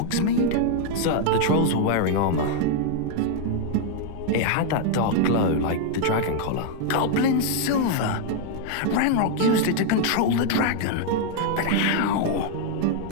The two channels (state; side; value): different; both; correlation 0.00